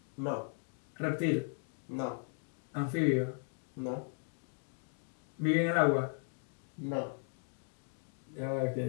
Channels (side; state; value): right; silent; 53 dB below the other